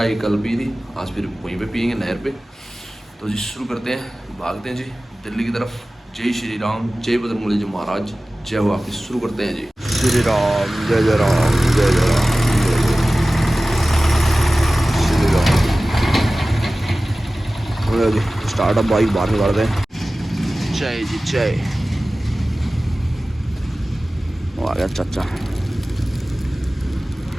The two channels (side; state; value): both; normal; correlation 0.97